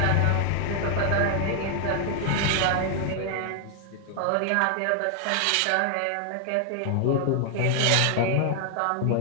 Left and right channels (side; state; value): both; different; correlation 0.00